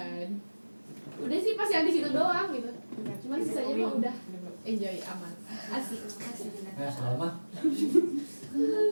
Udah sih pas yang di situ doang gitu. Cuman sisanya mah udah enjoy aman. Asik. Salma.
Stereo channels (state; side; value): inverted; both; correlation -1.00